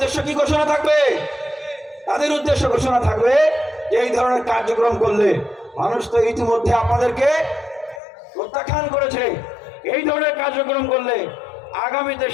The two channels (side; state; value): right; drops out; at 8.0 s